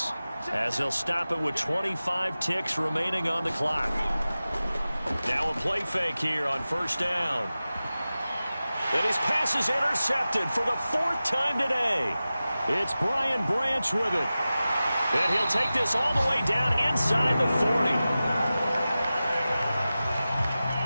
as they'll stop it with 25 ticks remaining on the clock. Now a play fake here on first down. And his pass is intercepted for the 4th time today. It's Brian Branch with it. And he'll take this all the way down inside the 40.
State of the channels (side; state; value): both; inverted; correlation -0.95